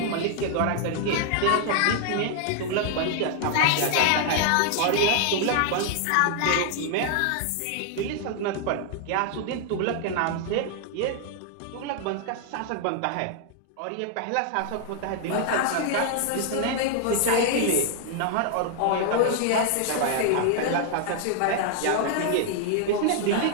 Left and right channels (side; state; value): both; different; correlation 0.00